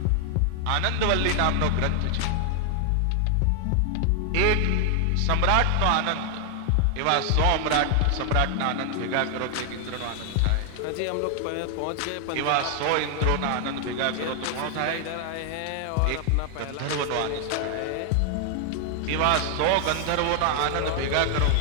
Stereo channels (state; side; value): different; both; correlation 0.00